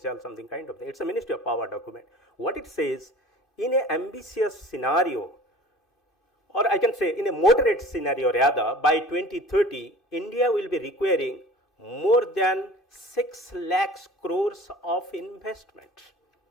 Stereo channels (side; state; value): both; normal; correlation 0.43